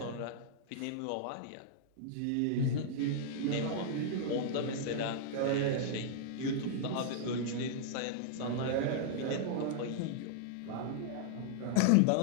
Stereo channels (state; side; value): different; both; correlation -0.01